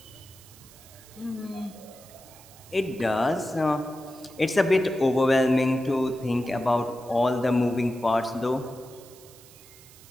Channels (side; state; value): right; noise; hiss, 22 dB below the sound